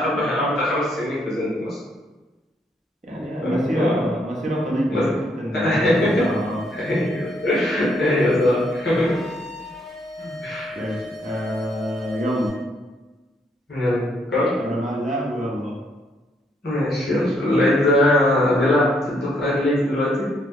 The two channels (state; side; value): normal; both; correlation 0.72